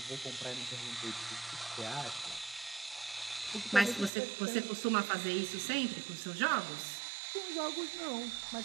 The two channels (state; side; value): drops out; left; at 4.1 s